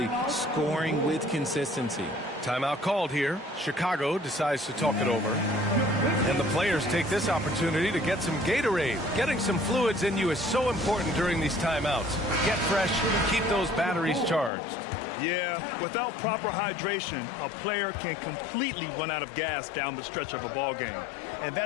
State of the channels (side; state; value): right; drops out; at 14.5 s